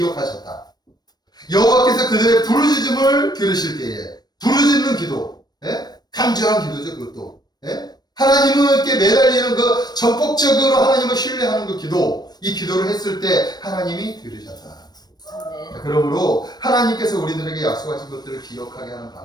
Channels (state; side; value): late; right; 0.19 ms